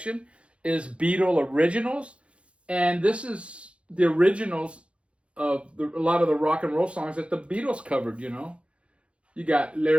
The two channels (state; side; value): late; left; 0.060 ms